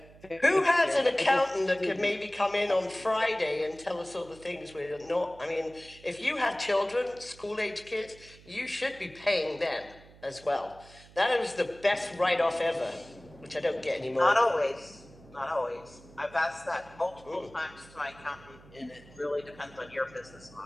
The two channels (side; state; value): right; noise; hum, 22 dB below the sound